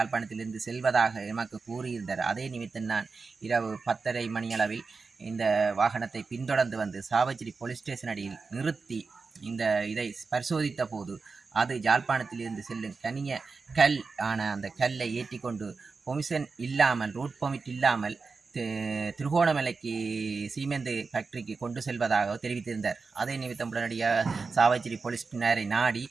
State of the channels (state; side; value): quieter; left; 4.5 dB